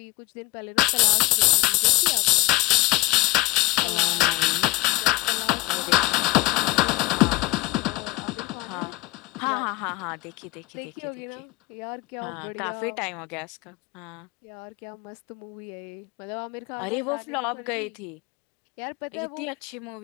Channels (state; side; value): quieter; right; 19.9 dB